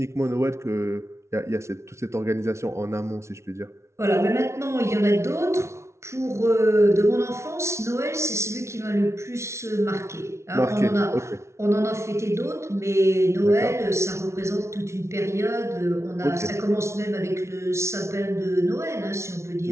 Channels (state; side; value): late; left; 0.13 ms